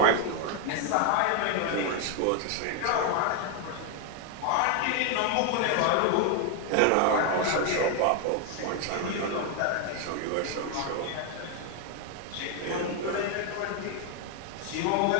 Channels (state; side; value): different; both; correlation 0.00